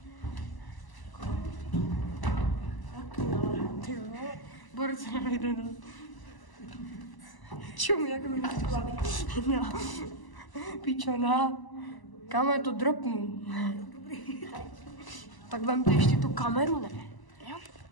Ty jo. Borce nejde do... Čum, jak mi nechci. No. Pičona. Kam je to dropnu? Tak vemte ještě tu kameru, ne? Jo.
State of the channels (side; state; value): right; late; 1.0 ms